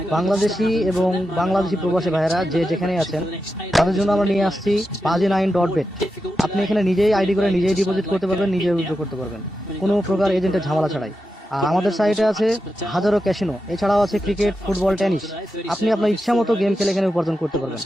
বাংলাদেশি এবং বাংলাদেশি প্রবাসী ভাইয়েরা যে যেখানে আছেন তাদের জন্য আমরা নিয়ে আসছি baji9.bet। আপনি এখানে নিজেই আইডি করে নিজেই ডিপোজিট করতে পারবেন, নিজেই উইথড্র করতে পারবেন, কোনো প্রকার এজেন্টের ঝামেলা ছাড়াই। আর আমাদের সাইটে আছে হাজারো ক্যাসিনো, এছাড়াও আছে ক্রিকেট, ফুটবল, টেনিস। আপনি আপনার ইচ্ছা মতো গেম খেলে এখানে উপার্জন করতে পারবেন।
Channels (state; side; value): normal; both; correlation 0.89